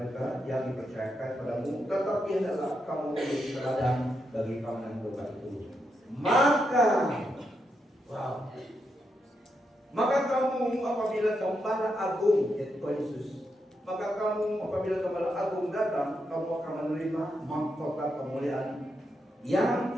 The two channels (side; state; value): both; normal; correlation 0.83